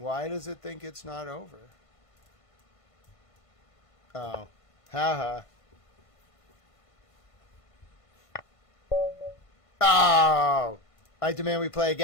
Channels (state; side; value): late; right; 1.5 ms